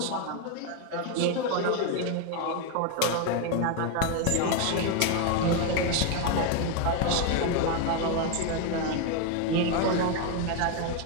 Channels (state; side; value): different; both; correlation 0.01